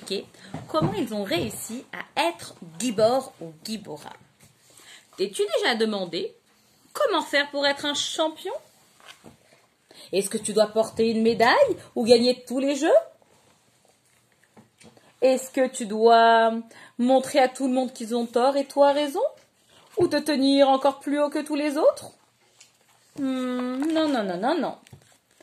comment ils ont réussi à être gibor ou gibora. T'es-tu déjà demandé comment faire pour être un champion? Est-ce que tu dois porter une médaille ou gagner tous les jeux? Est-ce que tu dois montrer à tout le monde qu'ils ont tort et toi raison? Ou te tenir encore plus haut que tous les autres? Non.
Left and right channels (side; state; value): both; identical; correlation 1.00